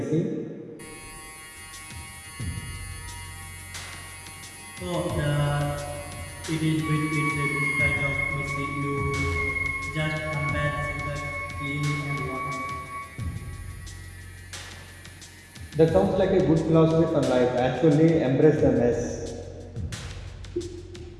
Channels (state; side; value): identical; both; correlation 1.00